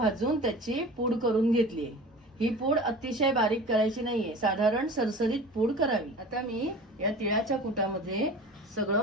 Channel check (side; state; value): both; normal; correlation 0.38